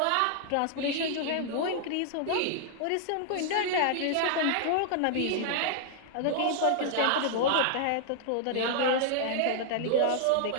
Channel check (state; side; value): different; both; correlation -0.01